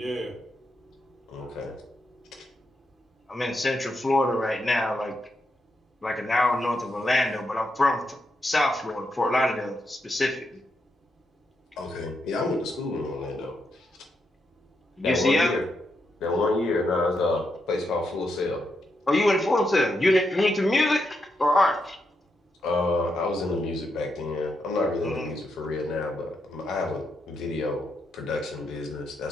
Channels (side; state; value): both; normal; correlation 0.82